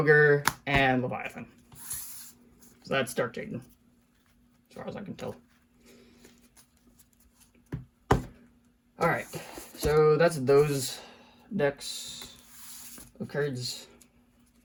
and Leviathan. So that's Dark Jaden, as far as I can tell. Alright, so that's those decks of cards.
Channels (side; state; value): both; identical; correlation 1.00